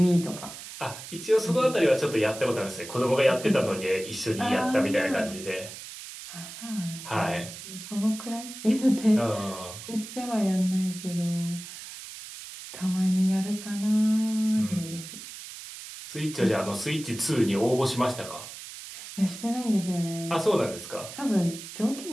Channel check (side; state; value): right; noise; hiss, 12 dB below the sound